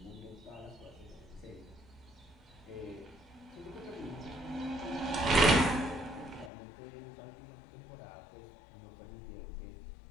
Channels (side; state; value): right; drops out; at 6.5 s